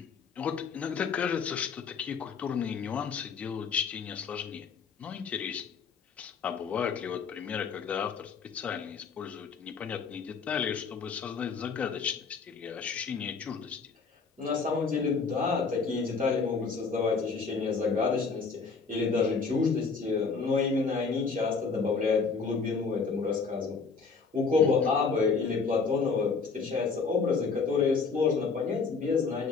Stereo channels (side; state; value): right; quieter; 5.0 dB